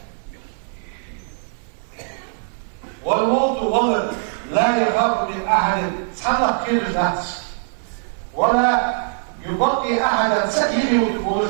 والموت ولد لا يخاف من أحد سحلق كير الناس ولا يبقي أحدا سكينه وتقول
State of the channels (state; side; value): silent; left; 61 dB below the other